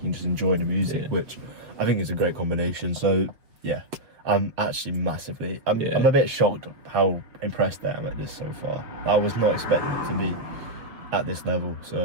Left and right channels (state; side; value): late; left; 7.0 ms